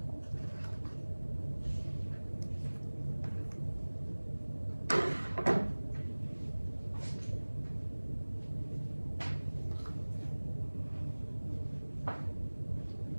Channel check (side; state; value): both; inverted; correlation -1.00